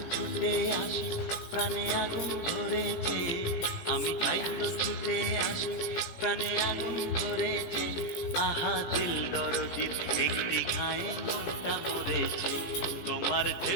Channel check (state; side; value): late; right; 17 ms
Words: ছুটে আসি, প্রাণে আগুন ধরেছে, আমি তাই তো ছুটে আসি, প্রাণে আগুন ধরেছে। আহা দিল দরদির একটি ঘায়ে মনটা মরেছে, তোমার